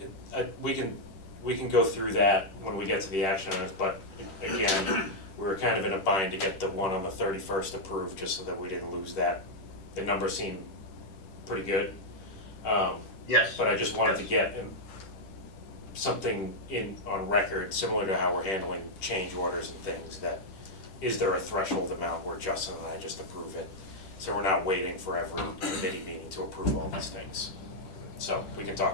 can go through that when we get to the action items, but again, we were kind of in a bind to get the one on the 31st approved, just so that we didn't lose that. The numbers seem pretty good. Yes. But I just wanted to get something on record, similar to how we're handling change orders and things, that is there a threshold amount where Justin and I just approve it? So we're not waiting for every committee meeting to approve all these things. So we can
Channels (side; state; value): right; late; 10 ms